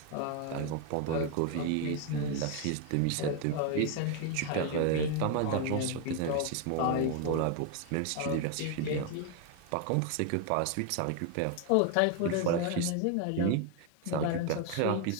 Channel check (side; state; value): both; different; correlation 0.01